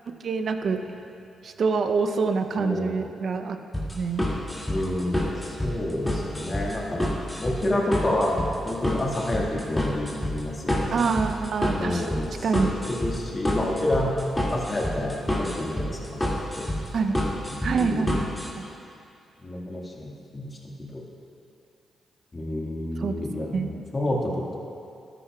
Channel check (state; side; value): normal; both; correlation 0.87